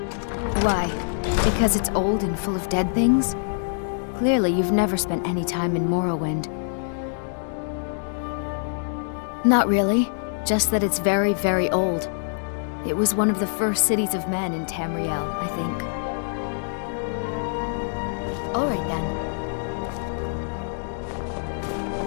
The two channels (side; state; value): right; silent; digital silence